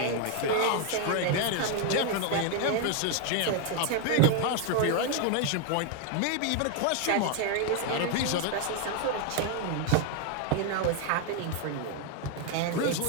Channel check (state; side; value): different; both; correlation 0.01